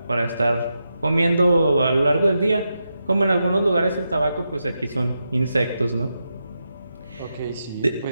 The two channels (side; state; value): both; inverted; correlation -0.87